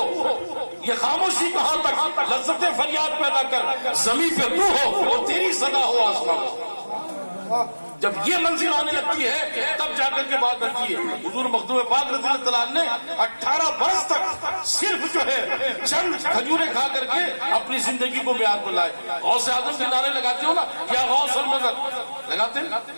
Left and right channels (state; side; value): inverted; both; correlation -1.00